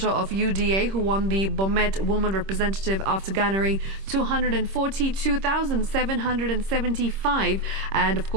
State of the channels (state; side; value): late; left; 26 ms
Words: of UDA, who won the Bomet woman representative after garnering 242,775. And of